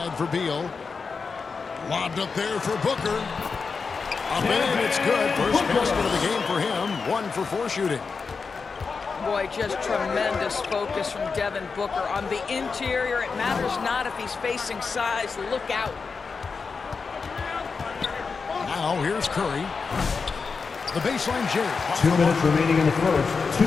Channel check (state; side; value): quieter; right; 5.0 dB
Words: for Beal. Lobbed up there for Booker. Up and it's good. First basket of the game for him. 1 for 4 shooting. Boy, just tremendous focus from Devin Booker. On the interior, it matters not if he's facing size. Look out. Now here's Curry. The baseline J. 2 minutes remaining in the first. 2